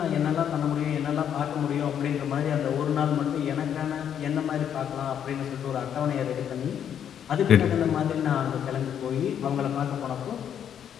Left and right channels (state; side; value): quieter; right; 9.0 dB